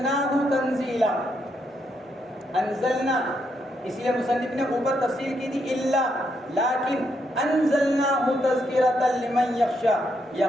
تنزیلا، انزلنا، اس لیے مصنف نے اوپر تفسیر کی تھی الا، لیکن انزلناہ تذکرۃ لمن یخشی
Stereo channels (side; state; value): both; normal; correlation 0.78